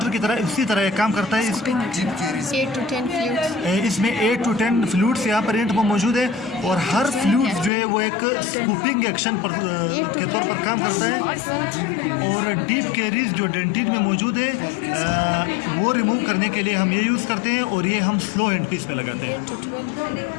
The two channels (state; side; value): drops out; right; at 7.7 s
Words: की तरह, इसी तरह काम करता है। इसमें 8 to 10 फ्लूट्स यहाँ पर एंड में मौजूद है, और हर फ्लूट जो है वो एक स्कूपिंग एक्शन के तौर पर काम करता है। और डीप कैरीज जो डेंटिन में मौजूद है वो रिमूव करने के लिए हम ये यूज़ करते हैं, और ये हम स्लो हैंड पीस में लगाते हैं।